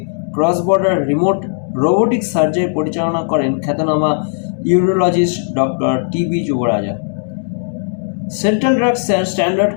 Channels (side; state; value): right; silent; digital silence